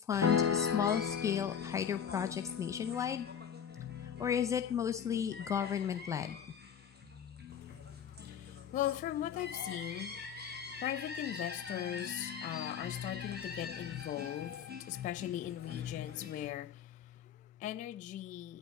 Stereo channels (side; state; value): right; quieter; 8.1 dB